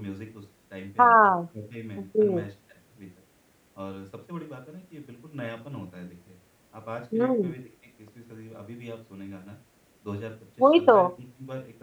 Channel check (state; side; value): identical; both; correlation 1.00